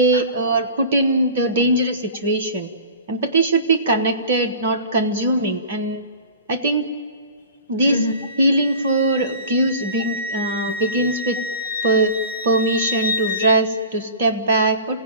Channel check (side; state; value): both; inverted; correlation -0.39